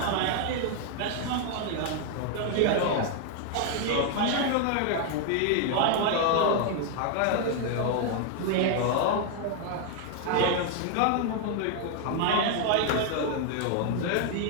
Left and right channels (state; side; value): different; both; correlation 0.00